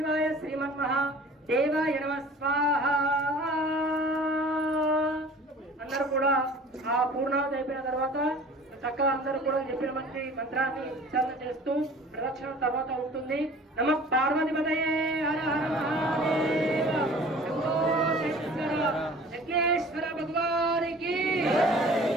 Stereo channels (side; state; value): both; normal; correlation 0.46